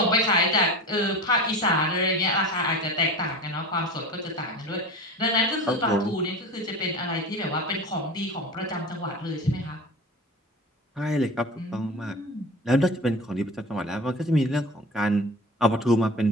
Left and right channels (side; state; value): both; normal; correlation 0.33